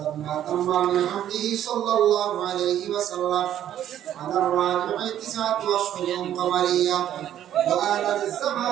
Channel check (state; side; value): quieter; left; 11.2 dB